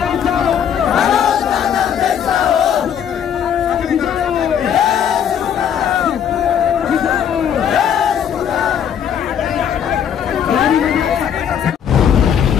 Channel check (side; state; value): right; quieter; 8.6 dB